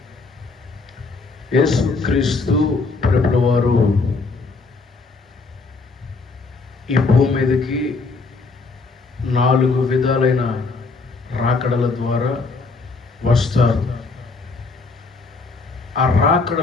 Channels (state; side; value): quieter; right; 4.1 dB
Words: యేసుక్రీస్తు ప్రభుల వారు ఈ భూమి మీదకి 4 విధాలైన రాకడల ద్వారా వస్తారు. ఆ